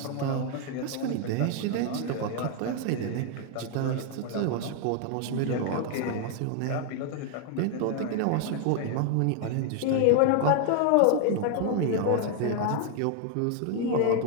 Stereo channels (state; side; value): different; both; correlation 0.01